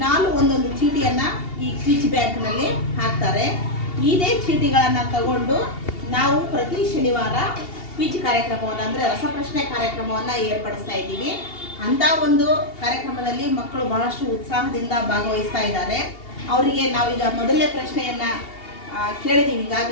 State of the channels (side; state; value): right; late; 2.8 ms